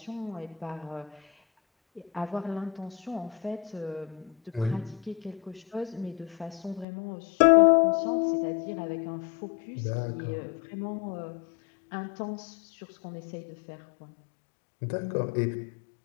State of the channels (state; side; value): drops out; right; at 6.9 s